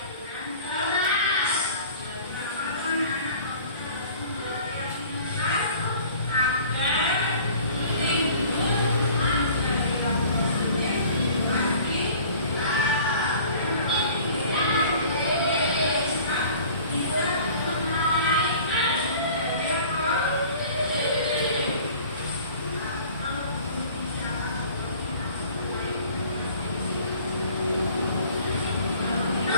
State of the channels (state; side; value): inverted; both; correlation -0.48